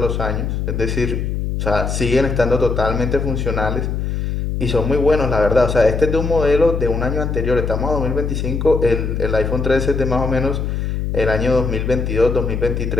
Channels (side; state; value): left; noise; hum, 2 dB below the sound